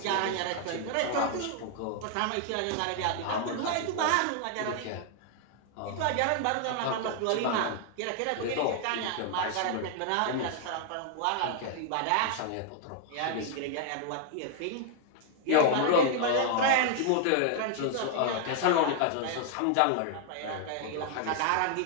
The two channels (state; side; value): different; both; correlation 0.00